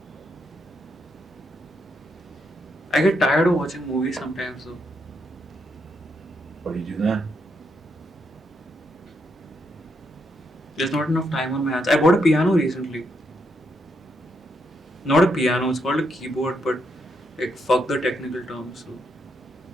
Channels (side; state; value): both; normal; correlation 0.78